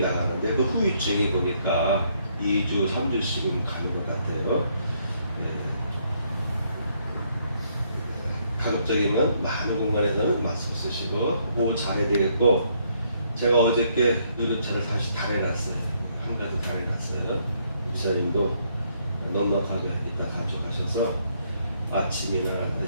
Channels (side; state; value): both; inverted; correlation -0.71